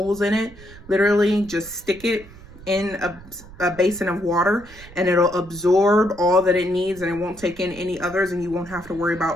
in it, literally just stick it in a basin of water and it'll absorb all that it needs and it won't take in any others, and you won't have to worry about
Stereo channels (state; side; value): noise; right; rumble, 19 dB below the sound